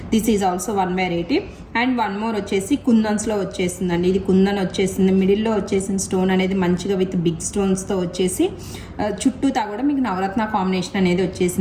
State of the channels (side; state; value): both; identical; correlation 1.00